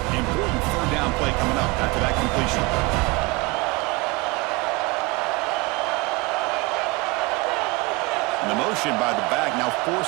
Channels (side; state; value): left; quieter; 24.9 dB